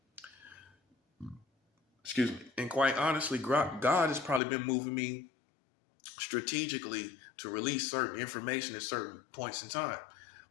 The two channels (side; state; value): right; drops out; at 4.4 s